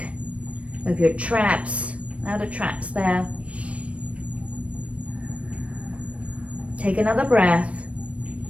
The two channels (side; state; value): left; late; 0.063 ms